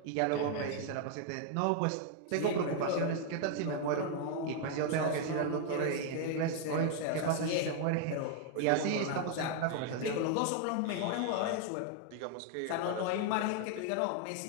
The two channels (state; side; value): different; both; correlation 0.00